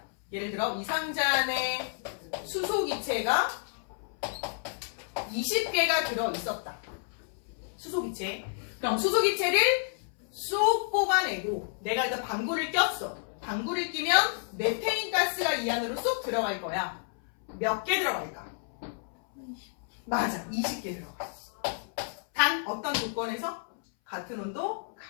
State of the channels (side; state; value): right; silent; 58 dB below the other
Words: 예를 들어 이 상자 안에 수소기체가 20개가 들어있었다. 수소기체. 그럼 수소기체를 쏙 뽑아내고 내가 일단 방구를 꼈어. 방구를 끼면 메테인 가스가 이 안으로 쏙 들어갈 거야. 몇 개 들어갈까? 맞아, 20개 들어가. 단 어떤 조건에서? 같은 온도,